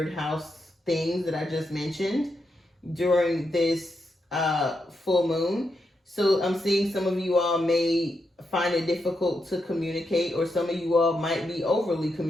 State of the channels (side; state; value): both; normal; correlation 0.84